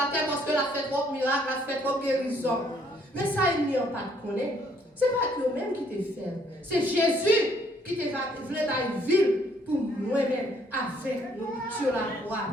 terre parce que la fait trop miracle, la fait trop guérison. Mais ça, il n'y a pas de connaître. Ce n'est pas eux-mêmes qui te fait. C'est Jésus qui te voulait dans une ville pour nous-mêmes avec nous sur la croix.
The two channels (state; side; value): normal; both; correlation 0.66